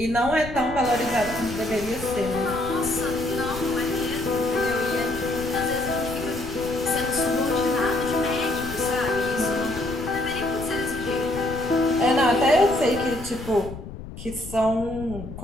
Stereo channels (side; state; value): left; noise; rumble, 11 dB below the sound